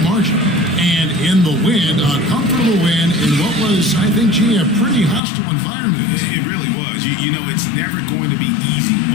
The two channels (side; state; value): right; drops out; at 5.2 s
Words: margin. And in the win, a comfortable win in what was, I think, a pretty hostile environment. It really was. You know, it's never going to be easy